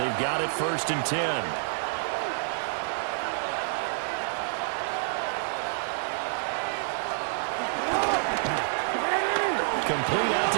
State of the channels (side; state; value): left; silent; digital silence